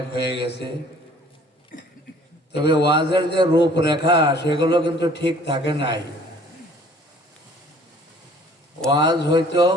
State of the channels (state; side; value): normal; both; correlation 0.54